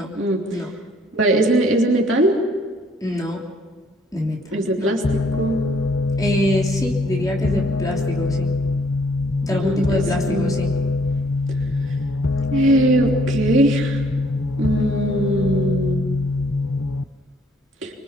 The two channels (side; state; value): both; normal; correlation 0.63